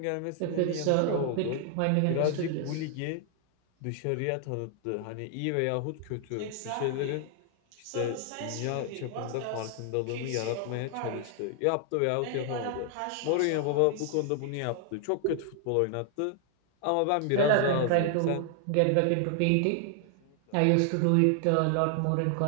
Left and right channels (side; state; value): both; different; correlation 0.00